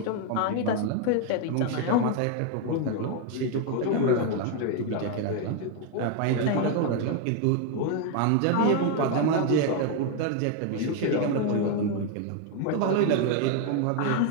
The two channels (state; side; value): different; both; correlation 0.01